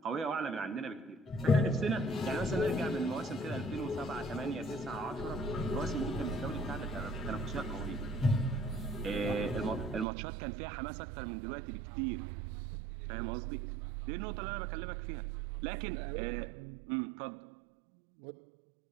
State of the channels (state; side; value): drops out; left; at 10.1 s